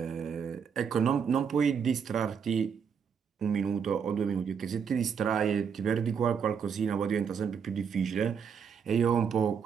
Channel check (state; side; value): quieter; left; 6.9 dB